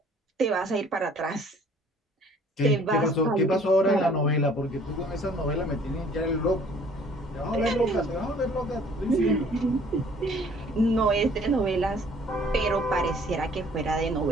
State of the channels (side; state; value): both; normal; correlation 0.55